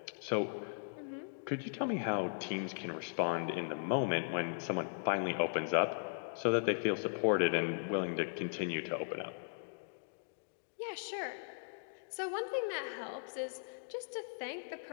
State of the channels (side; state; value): right; silent; digital silence